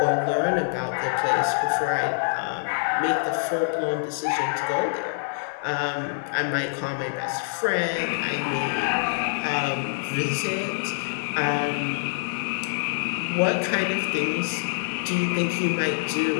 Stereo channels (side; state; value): right; silent; digital silence